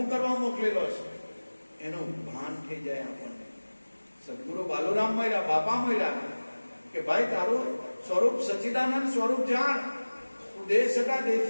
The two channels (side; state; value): both; inverted; correlation -1.00